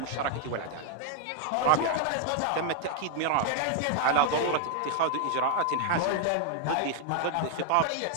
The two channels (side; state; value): both; different; correlation 0.00